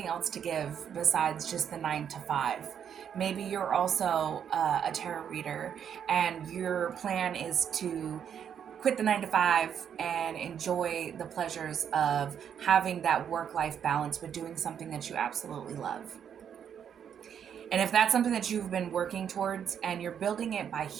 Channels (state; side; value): quieter; left; 8.4 dB